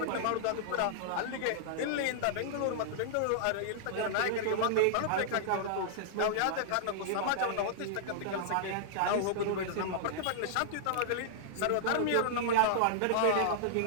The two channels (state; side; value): different; both; correlation -0.01